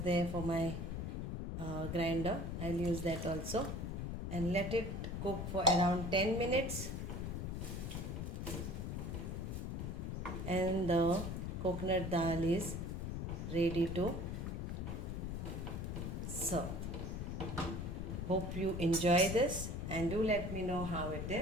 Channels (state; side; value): noise; left; rumble, 3 dB below the sound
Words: for my grinder. I'll use that also and let it cook for around 10 minutes. And the coconut dal is ready to serve. Hope you enjoy this and do let me know how it